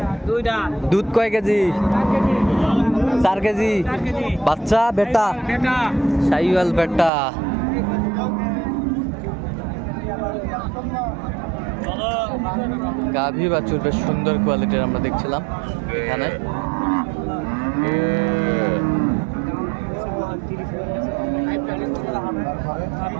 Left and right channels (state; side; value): drops out; left; at 7.1 s